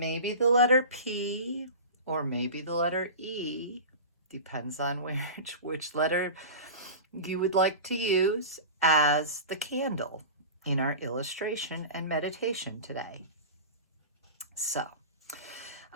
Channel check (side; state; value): both; inverted; correlation -0.32